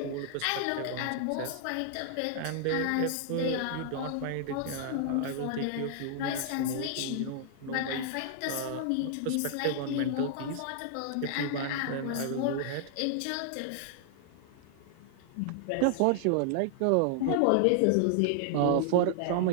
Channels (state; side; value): different; both; correlation -0.01